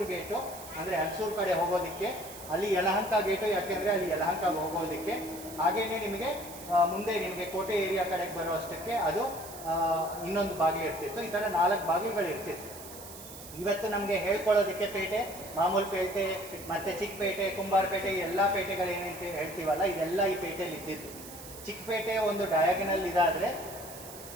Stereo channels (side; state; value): right; noise; hiss, 14 dB below the sound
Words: ಗೇಟು, ಅಂದರೆ ಅಲ್ಸೂರ್ ಕಡೆ ಹೋಗೋದಕ್ಕೆ ಅಲ್ಲಿ ಯಲಹಂಕ ಗೇಟು, ಯಾಕೆಂದರೆ ಅಲ್ಲಿ ಯಲಹಂಕಗೆ ಹೋಗೋದಕ್ಕೆ. ಹಾಗೆಯೇ ನಿಮಗೆ ಮುಂದೆ ನಿಮಗೆ ಕೋಟೆ ಏರಿಯಾ ಕಡೆಗೆ ಬರೋ ಅಷ್ಟಕ್ಕೆ ಅದು ಇನ್ನೊಂದು ಬಾಗಿಲು ಇರ್ತಿತ್ತು. ಈ ಥರ 4 ಬಾಗಿಲುಗಳು ಇರ್ತಿತ್ತು. ಇವತ್ತು ನಮಗೆ ಹೇಳ್ಕೊಳ್ಳೋದಕ್ಕೆ ಪೇಟೆ, ಮಾಮೂಲು ಪೇಟೆ, ಮತ್ತು ಚಿಕ್ಕಪೇಟೆ, ಕುಂಬಾರಪೇಟೆ, ಎಲ್ಲ ಪೇಟೆಗಳೇನಂತ ಹೇಳ್ತೀವಲ್ಲ, ಇದೆಲ್ಲ ಈ ಪೇಟೆಯಲ್ಲಿ ಇದ್ದಿತ್ತು. ಚಿಕ್ಕಪೇಟೆ ಒಂದು ಡಯಾಗನಲ್ ಇದಾದರೆ,